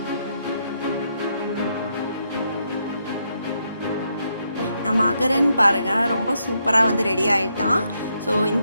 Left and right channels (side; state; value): both; inverted; correlation -0.78